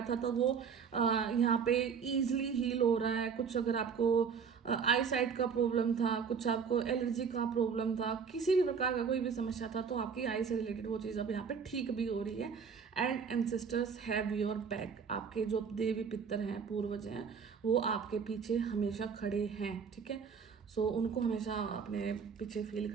था तो वो यहाँ पे इजीली हील हो रहा है। कुछ अगर आपको आई साइट का प्रॉब्लम था, कुछ आपको एलर्जी का प्रॉब्लम था, किसी भी प्रकार का कोई भी समस्या था, तो आपकी आई से रिलेटेड वो चीज़ अब यहाँ पे ठीक भी हो रही है। And ancestors have your back, आपके जो देवी पितर हैं, पूर्वज हैं, वो आपके पीछे हमेशा खड़े हैं, ठीक है। सो उनको हमेशा अपने पीछे फील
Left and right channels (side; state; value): left; quieter; 6.2 dB